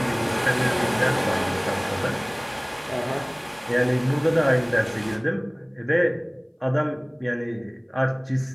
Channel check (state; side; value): identical; both; correlation 1.00